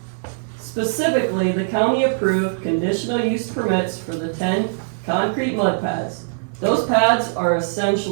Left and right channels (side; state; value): left; silent; digital silence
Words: Specifically, the county approved conditional use permits for the 10 concrete mud pads. Those pads are